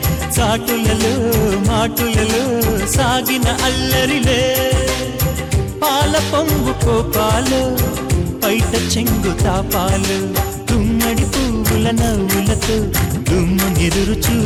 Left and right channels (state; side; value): identical; both; correlation 1.00